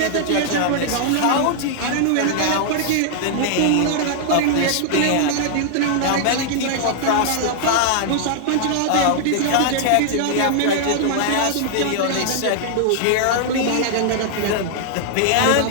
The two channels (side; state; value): both; different; correlation -0.01